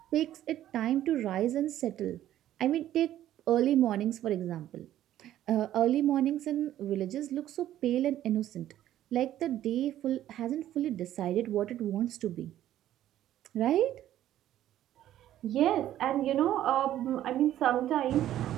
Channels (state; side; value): quieter; left; 12.5 dB